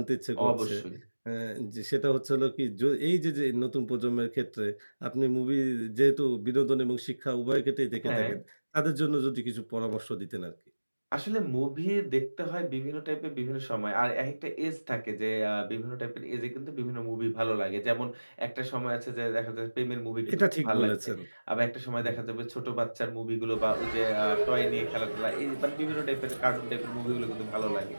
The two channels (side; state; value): both; inverted; correlation -1.00